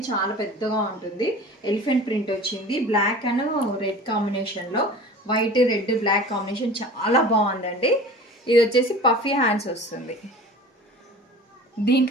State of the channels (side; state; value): both; normal; correlation 0.40